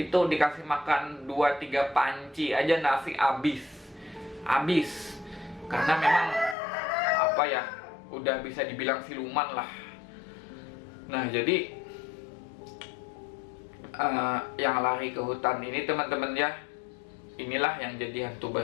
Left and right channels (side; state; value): right; drops out; at 6.6 s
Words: dikasih makan 2-3 panci aja nasi habis. Karena memang udah bisa dibilang siluman lah. Nah, jadi yang lari ke hutan ini, teman-teman ya, inilah yang jadi hantu